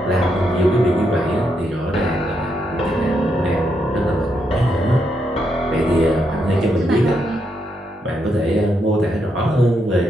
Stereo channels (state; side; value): normal; both; correlation 0.80